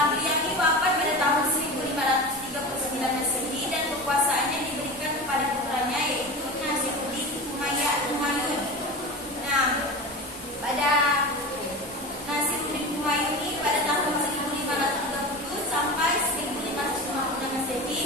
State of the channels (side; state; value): both; normal; correlation 0.29